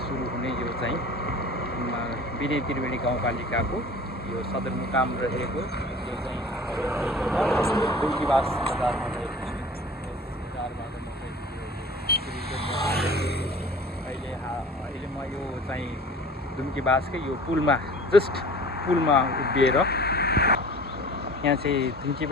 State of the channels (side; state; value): both; normal; correlation 0.43